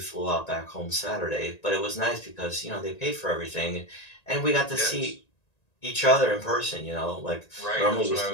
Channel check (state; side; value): late; right; 1.9 ms